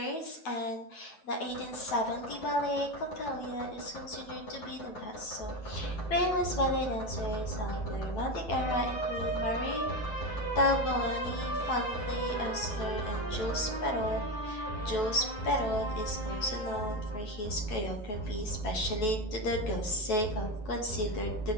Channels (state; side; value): late; right; 9.7 ms